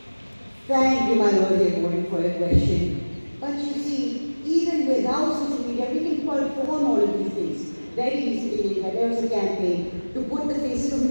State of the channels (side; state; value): both; inverted; correlation -1.00